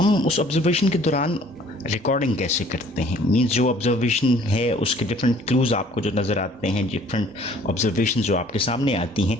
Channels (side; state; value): both; normal; correlation 0.55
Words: उस ऑब्जर्वेशन के दौरान रिकॉर्डिंग कैसे करते हैं। मींस जो ऑब्जर्वेशन है उसके डिफरेंट क्लूज़ आपको जो नज़र आते हैं, डिफरेंट ऑब्जर्वेशन जो आपके सामने आती हैं,